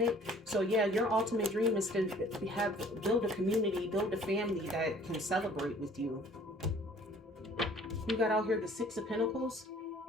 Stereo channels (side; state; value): both; normal; correlation 0.53